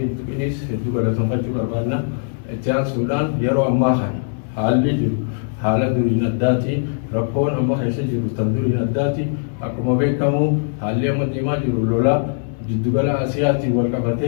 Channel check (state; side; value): silent; right; 66 dB below the other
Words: hin tuqinis hedduu galatoonfachuu barbaanna itti aansuudhaan yeroo ammaa kana haalli jiru haala duriin addaati rakkoon amma keessa jiru tan duriin addaati akkuma beekamu haalli amma deemaa jiru lola jiddugala Asiyaatiin wal